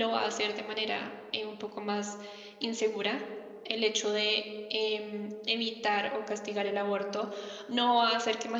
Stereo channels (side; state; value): both; identical; correlation 1.00